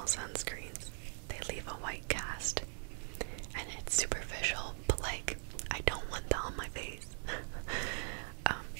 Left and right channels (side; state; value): left; silent; 51 dB below the other